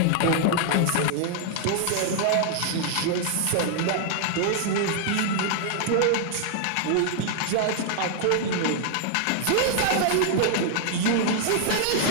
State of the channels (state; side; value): different; both; correlation 0.00